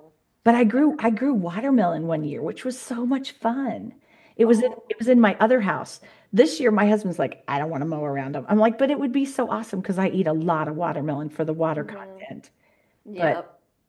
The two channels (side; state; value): both; identical; correlation 1.00